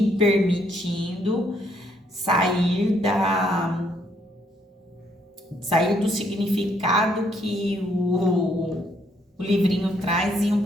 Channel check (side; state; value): both; normal; correlation 0.70